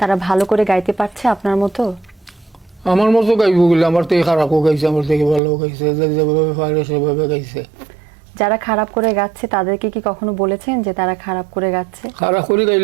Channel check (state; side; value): drops out; left; at 5.4 s